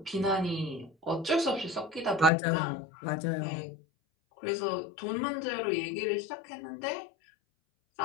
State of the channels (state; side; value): drops out; right; at 2.3 s